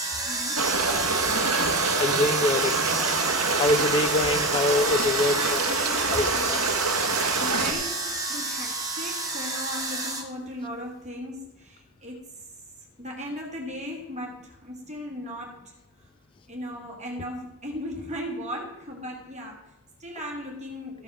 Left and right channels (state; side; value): normal; both; correlation 0.19